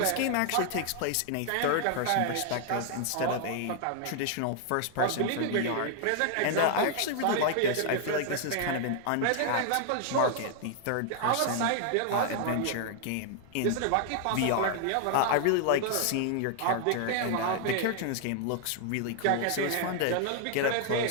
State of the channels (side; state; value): both; different; correlation 0.00